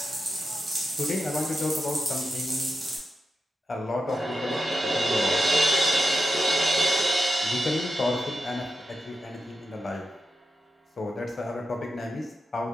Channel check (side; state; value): both; normal; correlation 0.89